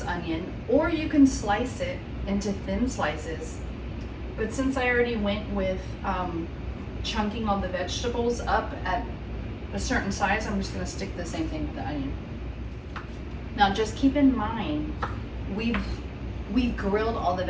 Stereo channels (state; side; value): identical; both; correlation 1.00